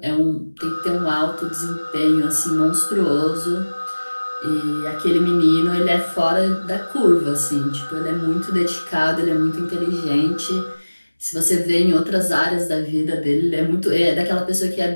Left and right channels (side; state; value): both; inverted; correlation -1.00